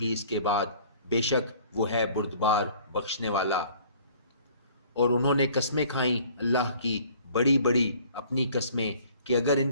اس کے بعد، بے شک وہ ہے بردبار بخشنے والا۔ اور انہوں نے قسمیں کھائیں اللہ کی بڑی بڑی اپنی قسمیں کہ اگر ان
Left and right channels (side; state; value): both; inverted; correlation -0.53